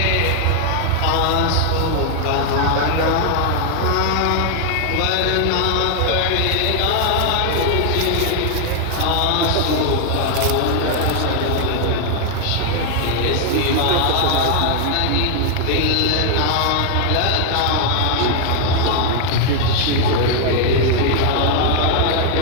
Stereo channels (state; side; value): different; both; correlation 0.00